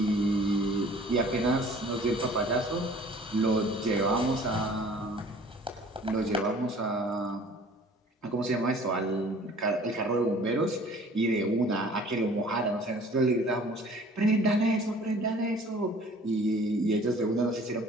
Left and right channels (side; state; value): both; normal; correlation 0.50